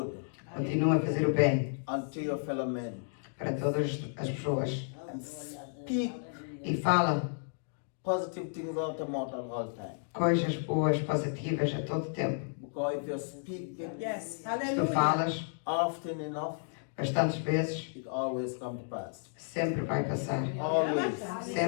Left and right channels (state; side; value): silent; right; digital silence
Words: Continua a fazer o bem unto your fellow men. para todas as pessoas. And speak E fala positive things out of mouth at all time. coisas boas, positivas a todo tempo. Because if you speak it Yes, Se tu hallelujah. falas often enough, bastantes vezes, it always comes to pass. sempre vai passar. Always.